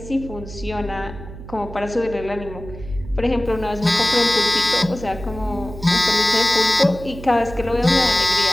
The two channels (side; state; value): right; noise; hum, 13 dB below the sound